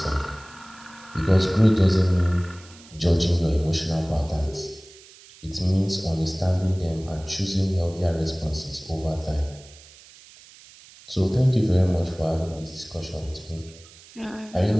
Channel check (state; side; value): noise; right; hiss, 22 dB below the sound